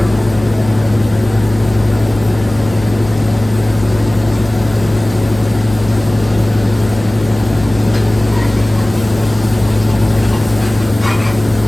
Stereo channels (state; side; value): noise; left; hum, 15 dB below the sound